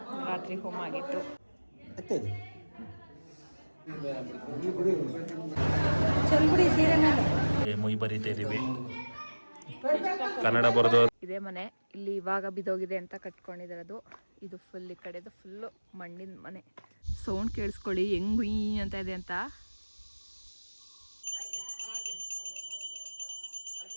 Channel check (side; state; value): both; inverted; correlation -1.00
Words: ರಾತ್ರಿ ಹೋಮ ಆಗಿತ್ತು. ಮುಯ್ ಬರೀತಾ ಇದೀವಿ. ಕನ್ನಡ ಬರೋದು. ಇದೇ ಮನೆ. ಇಲ್ಲಿ ಇವಾಗ ಬಿದ್ದೋಗಿದೆ ಅಂತ ಕಟ್ಕೊಂಡಿದ್ದಾರೆ. ಅದು ಇದು ಫುಲ್ ಈ ಕಡೆದು ಫುಲ್ ಮಣ್ಣಿನ ಮನೆ. ಸೌಂಡ್ ಕೇಳಿಸ್ಕೊಳ್ಳಿ ಹೆಂಗ್ ಗುಯ್ ಅಂತ ಇದೆ ಅಂತ.